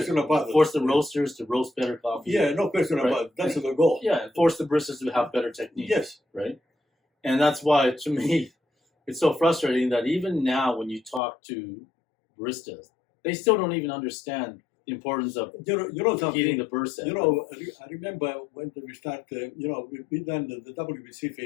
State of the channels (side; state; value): right; drops out; at 11.2 s